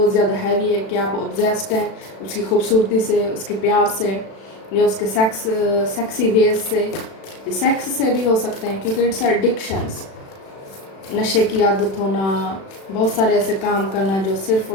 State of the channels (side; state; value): right; late; 36 ms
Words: ज़्यादा हैवी है कि आप ऑब्जेस्ड हैं उसकी खूबसूरती से, उसके प्यार से, या उसके सेक्सी वेज से, सेक्स से भी हो सकते हैं क्योंकि इट्स एडिक्शंस, नशे की आदत होना, बहुत सारे ऐसे काम करना जो सिर्फ